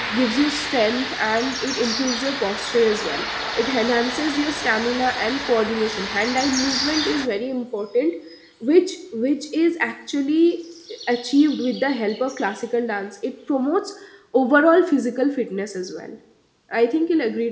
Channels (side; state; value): both; identical; correlation 1.00